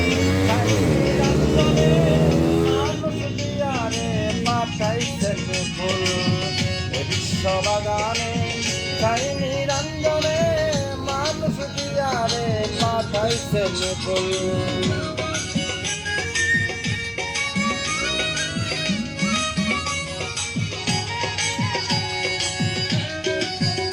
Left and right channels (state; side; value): identical; both; correlation 1.00